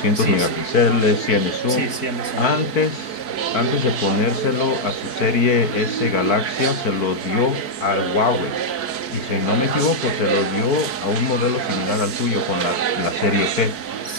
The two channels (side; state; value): right; late; 4.5 ms